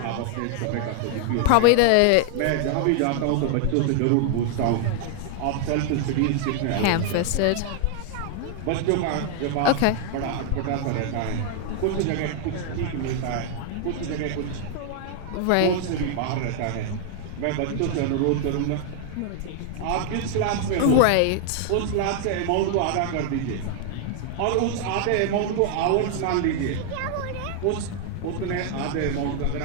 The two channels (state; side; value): different; both; correlation 0.00